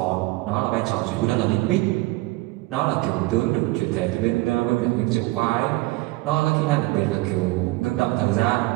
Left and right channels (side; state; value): left; quieter; 20.6 dB